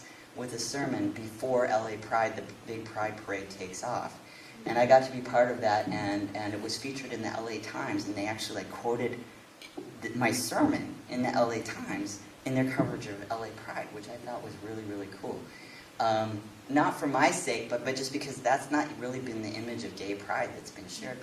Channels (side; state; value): both; identical; correlation 1.00